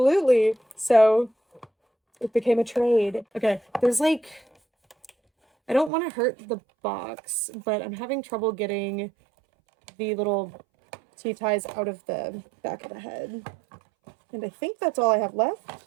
So it became a trade. Okay, there's like, I don't want to hurt the box, but I'm having trouble getting the little T-ties out of the back of the head. And I think that's all I have left.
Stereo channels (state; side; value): drops out; left; at 5.9 s